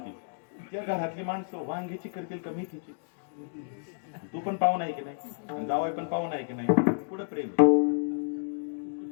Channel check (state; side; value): silent; right; digital silence